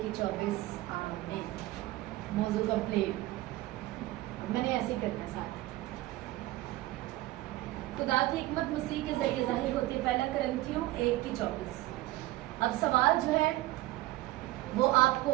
आमीन। मौजू कंप्लीट। मैंने ऐसे ही करना साथ। खुदा की हिकमत मसीह के जरिए जाहिर होती है। पहला कुरिन्थियों 1:24। अब सवाल जो है वो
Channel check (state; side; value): quieter; left; 17.4 dB